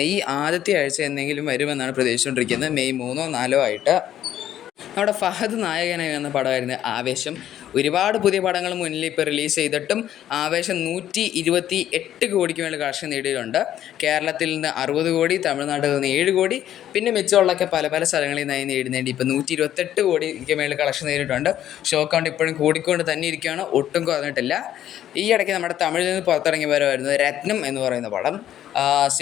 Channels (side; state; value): right; quieter; 11.5 dB